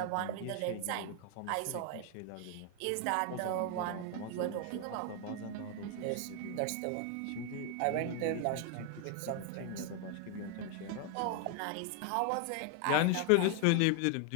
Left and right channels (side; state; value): both; different; correlation 0.00